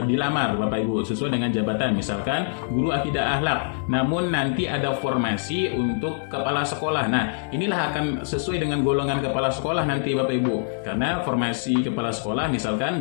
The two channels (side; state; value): right; silent; digital silence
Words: dilamar Bapak Ibu, sesuai dengan jabatan misalkan guru akidah akhlak. Namun nanti ada formasi untuk kepala sekolah. Nah, inilah akan sesuai dengan golongan kepala sekolah nanti Bapak Ibu. Karena formasi kepala sekolah misalkan